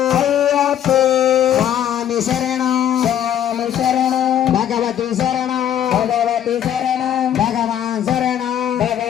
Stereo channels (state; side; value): quieter; right; 10.4 dB